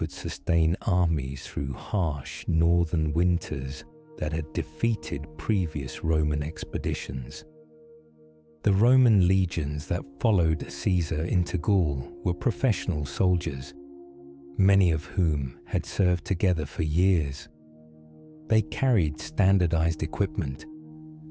sustain armies through harsh northern winters that had defeated previous Roman expeditions. The Roman legions that followed Caesar into Gaul were professional soldiers, many of whom had served together for years. They carried standardized equipment:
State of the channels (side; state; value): both; identical; correlation 1.00